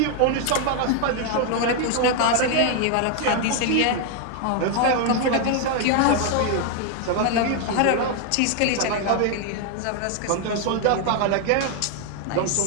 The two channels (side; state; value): both; different; correlation 0.00